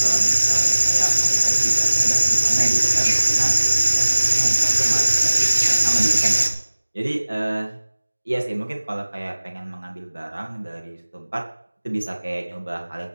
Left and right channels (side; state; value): both; inverted; correlation -1.00